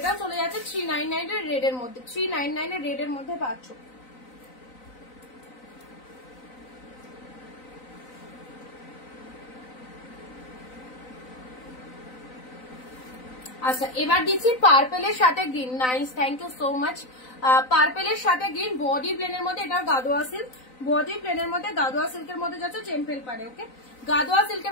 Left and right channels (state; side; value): late; right; 3.9 ms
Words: চলে যাচ্ছে 399 এর রেড এর মধ্যে, 399 এর রেড এর মধ্যে পাচ্ছ। আচ্ছা এবার দিচ্ছি পার্পেলের সাথে green, nice thank you so much. পার্পেলের সাথে গ্রিন, বডি প্লেনের মধ্যে, এটা গাদোয়া সিল্ক, বডি প্লেনের মধ্যে গাদোয়া সিল্কের মধ্যে যাচ্ছে টেম্পেল পাড়ে, ওকে গাদোয়া